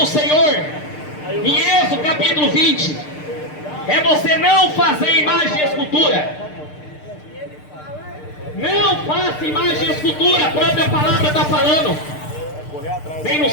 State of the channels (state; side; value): late; right; 6.6 ms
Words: Senhor, em Êxodo capítulo 20, é você não fazer imagem e escultura. Não faça imagem e escultura. A própria palavra está falando. Nem no